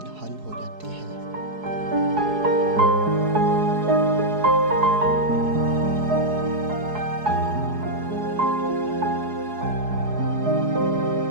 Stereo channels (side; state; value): left; late; 4.7 ms